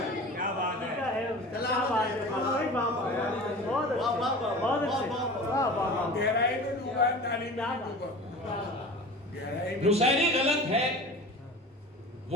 नुसैरी गलत है,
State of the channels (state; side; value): normal; both; correlation 0.37